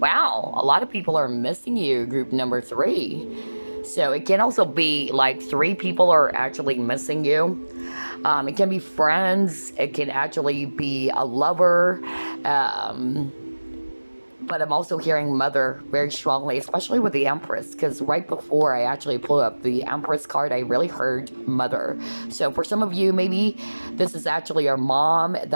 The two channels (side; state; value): both; inverted; correlation -1.00